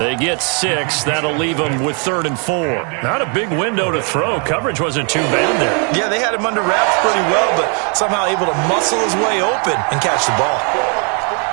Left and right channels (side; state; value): left; quieter; 38.2 dB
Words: get 6. That'll leave them with 3rd and 4. Not a big window to throw. Coverage wasn't too bad there. Yeah, they had him under wraps pretty well, but somehow able to muscle his way open and catch the ball.